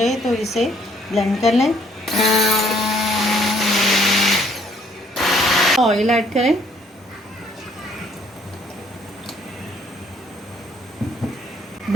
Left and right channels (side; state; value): both; normal; correlation 0.64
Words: तो इसे ब्लेंड कर लें। ऑयल ऐड करें।